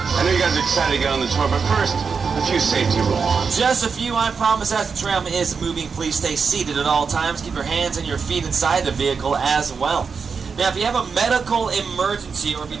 know you guys are excited to get on the tour, but first, a few safety rules. Just a few, I promise. As the tram is moving, please stay seated at all times. Keep your hands and your feet inside the vehicle as well. Now, if you have a medical emergency or if you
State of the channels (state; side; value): quieter; left; 5.5 dB